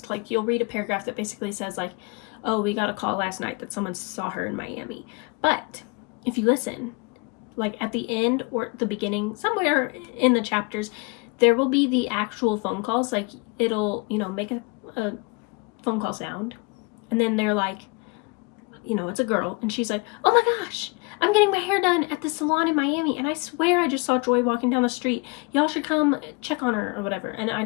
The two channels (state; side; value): quieter; right; 28.7 dB